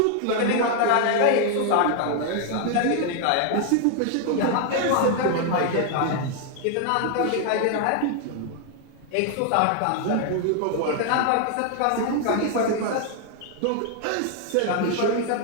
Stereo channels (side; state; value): both; different; correlation 0.00